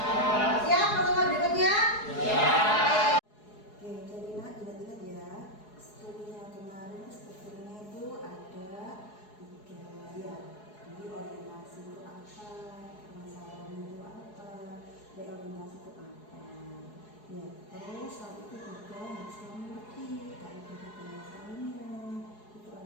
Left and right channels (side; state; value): right; late; 4.7 ms